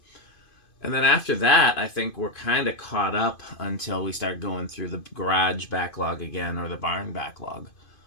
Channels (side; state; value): right; late; 2.5 ms